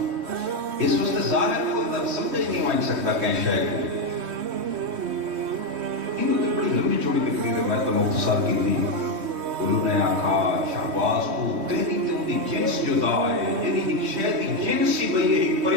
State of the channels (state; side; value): late; left; 3.2 ms